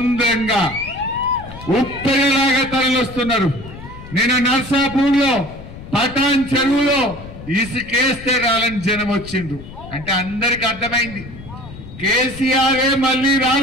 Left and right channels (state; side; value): noise; left; rumble, 15 dB below the sound